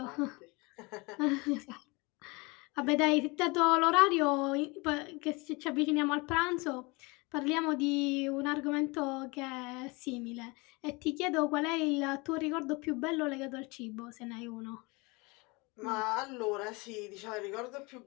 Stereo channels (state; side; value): quieter; right; 26.5 dB